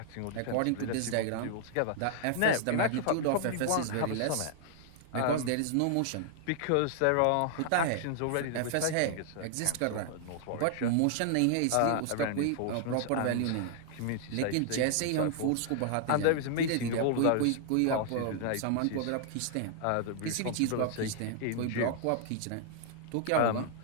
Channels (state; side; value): different; both; correlation 0.00